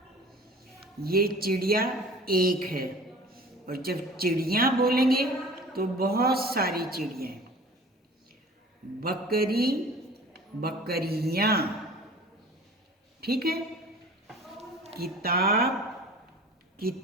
ये चिड़िया एक है, और जब चिड़िया बोलेंगे तो बहुत सारी चिड़िया। बकरी बकरियां, ठीक है। किताब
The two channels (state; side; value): normal; both; correlation 0.44